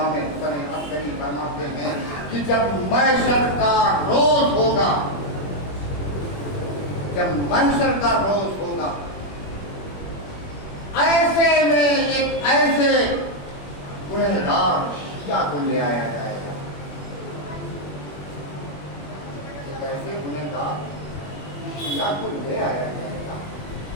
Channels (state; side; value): late; right; 21 ms